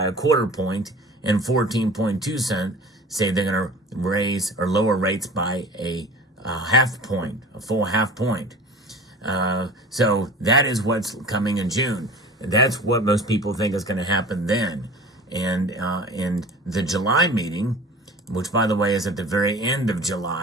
a quarter point, and 14.2% say they're going to raise or lower rates by a half point, a full half point. So that is what's coming in June. That's what most people think is going to happen then. And in the July meeting, which, by the way, is at the very end of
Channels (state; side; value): normal; both; correlation 0.40